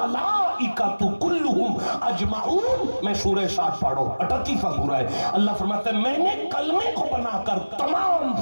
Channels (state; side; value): inverted; both; correlation -1.00